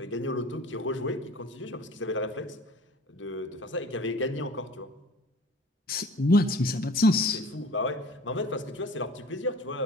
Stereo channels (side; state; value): both; normal; correlation 0.43